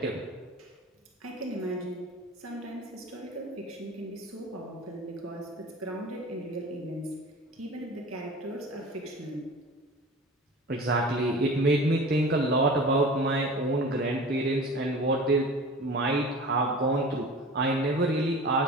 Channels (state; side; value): normal; both; correlation 0.38